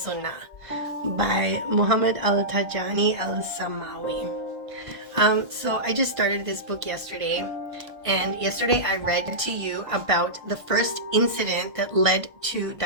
by Muhammad Al-Tijani Al-Samawi. So I just started this book yesterday, and yesterday I read to you about the first incident that led to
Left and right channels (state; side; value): late; left; 1.5 ms